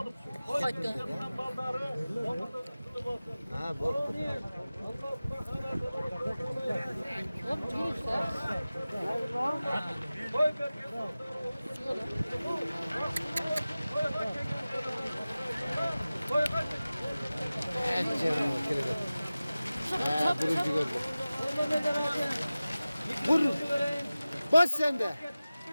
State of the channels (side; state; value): both; inverted; correlation -0.97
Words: Ha, bu. Evet canım, kirede. Ha, burucu gördüm. Vur. Bas sen de.